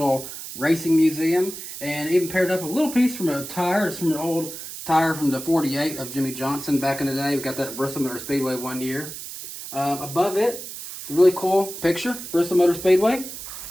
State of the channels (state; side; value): noise; right; hiss, 10 dB below the sound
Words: racing museum. And even paired up a little piece from a tire. It's from an old tire from the 48 of Jimmy Johnson back in the day. We got that at Bristol Motor Speedway one year. Above it, it's a really cool picture, Bristol Motor Speedway.